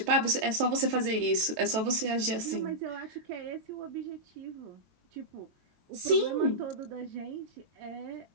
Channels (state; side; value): late; left; 22 ms